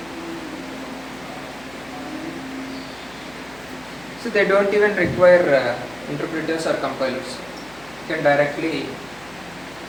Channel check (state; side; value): noise; left; hum, 24 dB below the sound